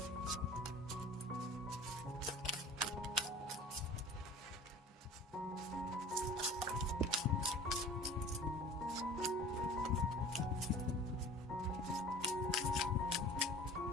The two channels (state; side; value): normal; both; correlation 0.43